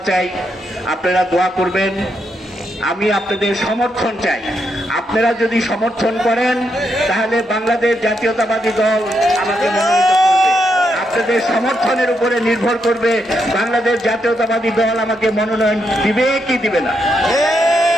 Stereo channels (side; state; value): both; normal; correlation 0.80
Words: চাই, আপনারা দোয়া করবেন। আমি আপনাদের সমর্থন চাই। আপনারা যদি সমর্থন করেন তাহলে বাংলাদেশ জাতীয়তাবাদী দল আমাকে মনোনীত করবে। আপনাদের সমর্থনের উপরে নির্ভর করবে বাংলাদেশ জাতীয়তাবাদী দল আমাকে মনোনয়ন দিবে কি দিবে না।